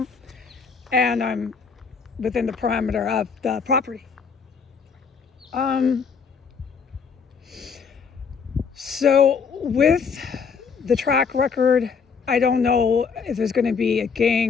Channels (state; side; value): quieter; right; 5.8 dB